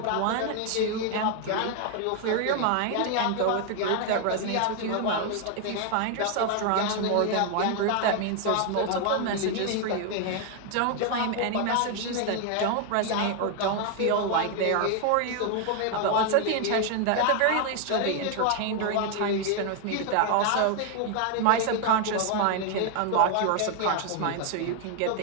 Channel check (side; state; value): both; different; correlation 0.00